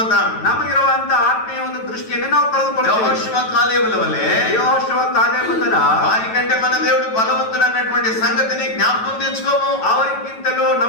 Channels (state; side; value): late; right; 9.2 ms